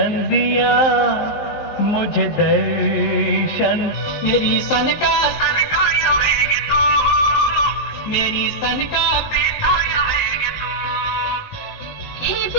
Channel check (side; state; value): right; late; 19 ms